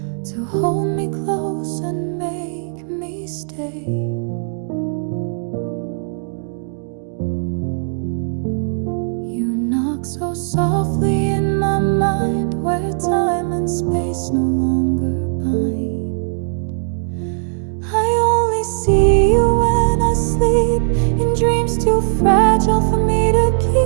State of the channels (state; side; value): silent; left; digital silence